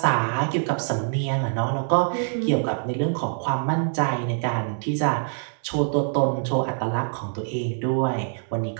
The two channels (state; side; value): silent; left; 57 dB below the other